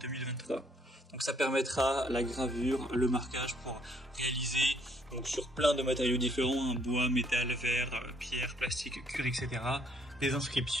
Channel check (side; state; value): both; normal; correlation 0.67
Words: Donc ça permettra la gravure, le marquage pour réaliser donc sur plein de matériaux différents, bois, métal, verre, pierre, plastique, cuir, etc. Des